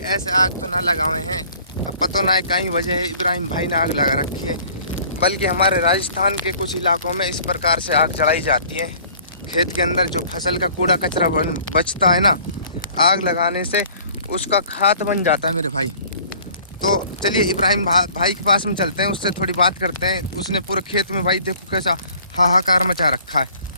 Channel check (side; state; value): both; inverted; correlation -0.52